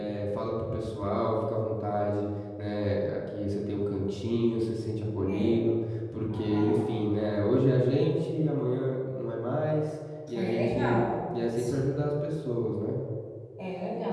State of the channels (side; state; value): both; identical; correlation 1.00